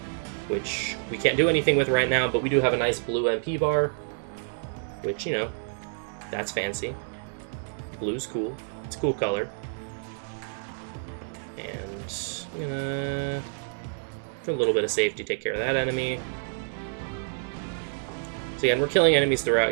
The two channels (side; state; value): left; silent; digital silence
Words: which we can't do anything with right now, but we do have a nice blue MP bar, which, you know, that's fancy. Blue's cool. It's a cool color. And, for a little bit of safety, take care of that enemy. So again, we're killing enemies